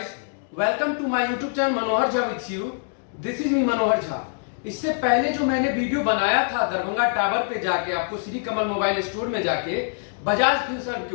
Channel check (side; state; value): right; silent; 62 dB below the other